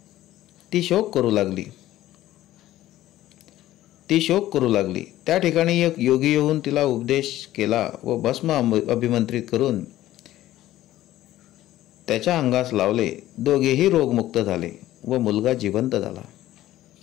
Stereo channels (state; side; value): quieter; right; 14.6 dB